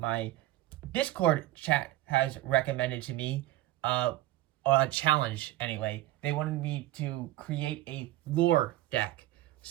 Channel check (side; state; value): left; quieter; 15.8 dB